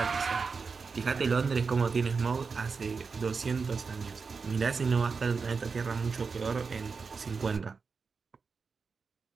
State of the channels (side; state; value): left; quieter; 5.0 dB